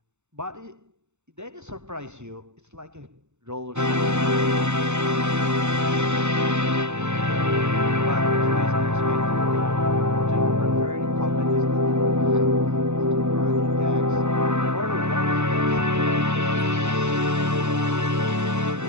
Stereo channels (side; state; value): left; late; 0.83 ms